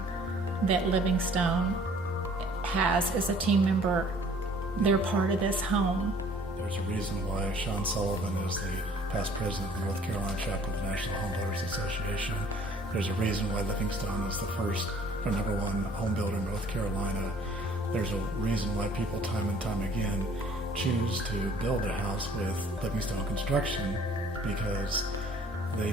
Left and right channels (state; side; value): noise; right; hum, 25 dB below the sound